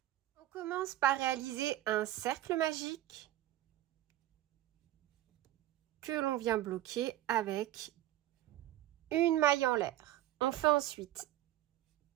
On commence par réaliser un cercle magique que l'on vient bloquer avec une maille en l'air. On fait ensuite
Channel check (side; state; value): left; quieter; 14.2 dB